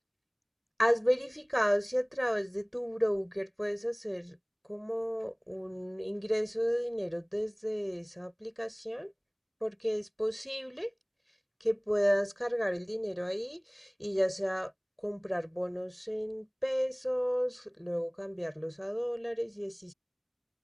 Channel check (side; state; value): both; identical; correlation 1.00